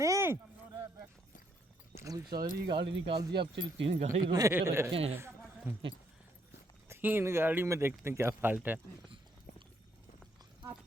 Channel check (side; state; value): both; normal; correlation 0.72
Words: अभी सारी गाड़ी निकाल दी, अब सिर्फ 3 गाड़ी रोक के रखे हैं। 3 गाड़ी में देखते हैं क्या फॉल्ट है। हूँ।